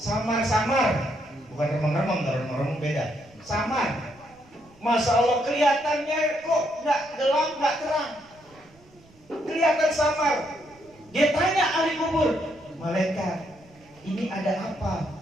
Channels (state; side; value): noise; right; rumble, 28 dB below the sound